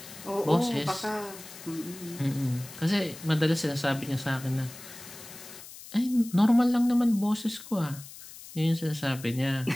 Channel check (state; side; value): noise; left; hiss, 16 dB below the sound